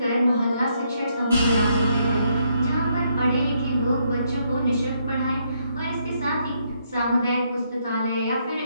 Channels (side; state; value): both; inverted; correlation -0.74